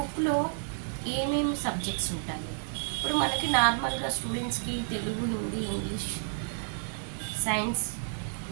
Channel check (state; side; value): silent; left; digital silence